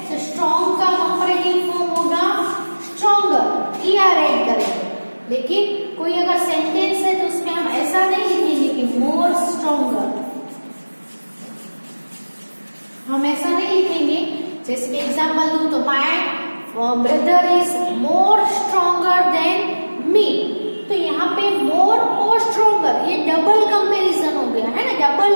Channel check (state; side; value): inverted; both; correlation -1.00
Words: तो स्ट्रॉन्ग का कंपैरेटिव फॉर्म होगा स्ट्रॉन्गर, ईआर ऐड करेंगे. लेकिन कोई अगर सेंटेंस है तो उसमें हम ऐसा नहीं लिखेंगे कि मोर स्ट्रॉन्गर, हम ऐसा नहीं लिखेंगे. जैसे कि एग्जांपल दूं तो my brother is more stronger than me. तो यहाँ पे मोर और स्ट्रॉन्गर ये डबल कंपैरिजन हो गया, है ना, डबल